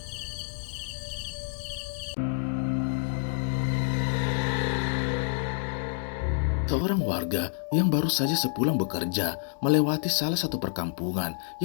Seorang warga yang baru saja sepulang bekerja melewati salah satu perkampungan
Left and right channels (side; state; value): right; silent; 59 dB below the other